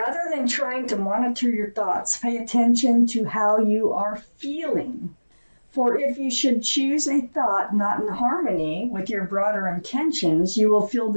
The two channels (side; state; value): both; inverted; correlation -1.00